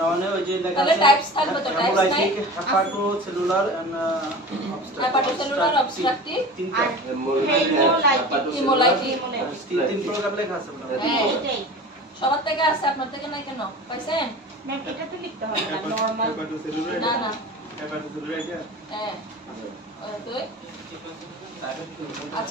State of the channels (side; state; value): both; normal; correlation 0.36